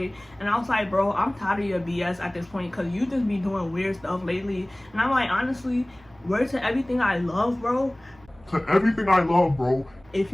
and I was like, bro, I'm tired of your BS at this point, because you just be doing weird stuff lately. And I'm like, honestly, word to everything I love, bro. To everything I love, bro. If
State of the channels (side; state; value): right; noise; hum, 27 dB below the sound